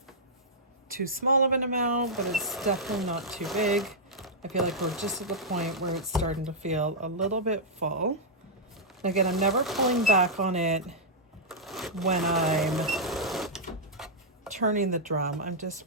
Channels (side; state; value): both; normal; correlation -0.09